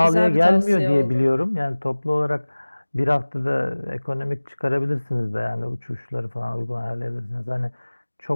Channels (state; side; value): inverted; both; correlation -1.00